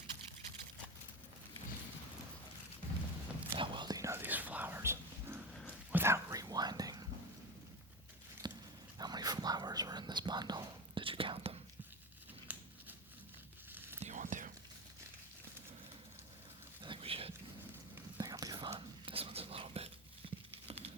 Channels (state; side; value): normal; both; correlation 0.23